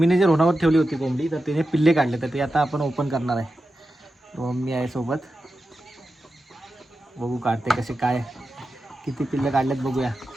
जे रोणावर ठेवली होती कोंबडी, तर तिने पिल्ले काढले, तर ते आता आपण ओपन करणार आहे. मम्मी आहे सोबत, बघू काढते कसे, काय किती पिल्ले काढलेत बघूया.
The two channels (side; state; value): both; normal; correlation 0.91